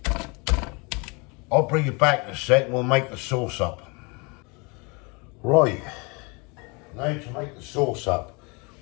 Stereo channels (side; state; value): right; quieter; 29.9 dB